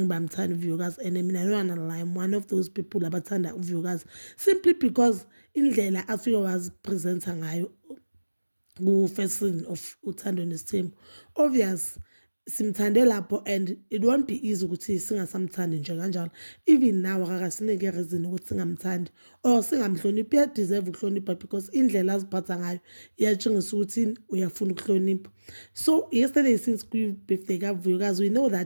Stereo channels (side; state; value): both; inverted; correlation -1.00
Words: bamthanda uVuyokazi and mina no I'm one of those people abathanda uVuyokazi simply because indlela afike wazipresenta ngayo ku-first season of Uthando Nesithembu. Obvious simthande lapho and it won't be easy ukuthi singasamthandi nje kanjalo. Even now akakasinike reason ukuthi singamthandi or singamhloniphi. Uyadeserve ukuhlonipha because indlela aziphatha ngayo iyatshengisa ukuthi uyafuna ukuhlonipha. So yesterday since kwi-birthday kaVuyokazi we know